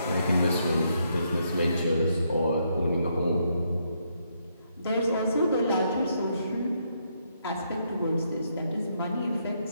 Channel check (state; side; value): inverted; both; correlation -0.76